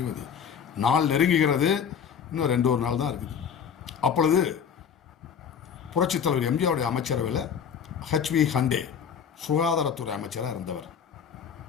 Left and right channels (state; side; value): quieter; right; 7.5 dB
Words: நாள் நெருங்குகிறது. இன்னும் 2 நாள் தான் இருக்குது. அப்பொழுது புரட்சித் தலைவர் எம்ஜிஆருடைய அமைச்சரவையில் HV ஹண்டே சுகாதாரத்துறை அமைச்சராக இருந்தவர்.